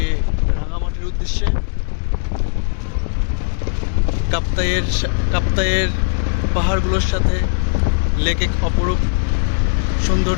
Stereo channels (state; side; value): silent; right; 67 dB below the other